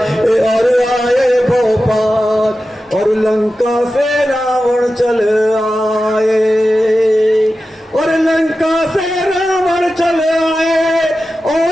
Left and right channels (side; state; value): both; normal; correlation 0.93